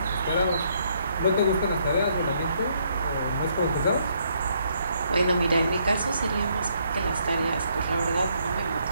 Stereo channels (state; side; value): inverted; both; correlation -0.71